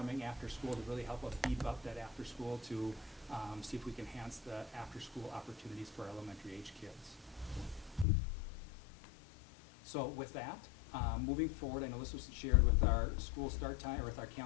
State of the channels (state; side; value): drops out; right; at 8.1 s